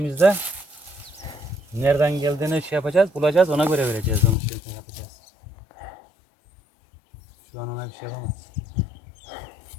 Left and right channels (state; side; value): drops out; right; at 4.4 s